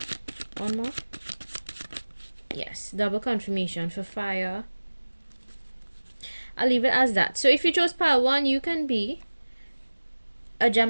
One more. Yes, double confirmation for fire. I'll leave it as that. So if you chose pile 1, you can be a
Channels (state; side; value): inverted; both; correlation -1.00